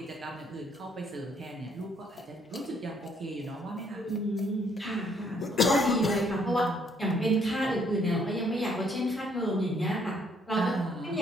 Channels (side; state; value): both; normal; correlation 0.67